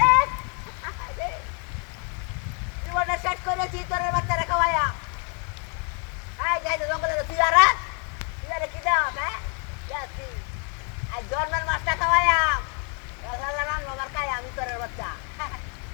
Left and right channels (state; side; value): quieter; right; 38.8 dB